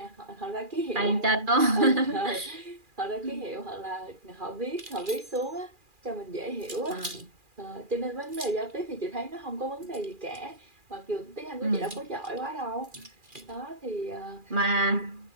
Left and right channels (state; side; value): late; left; 2.4 ms